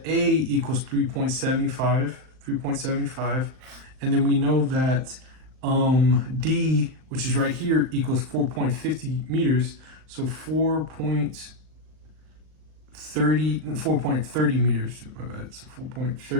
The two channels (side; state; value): left; late; 38 ms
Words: A equals 3.75. And then we know that D, which is right here, equals 4.50 meters. So 4.30 meters. My bad. So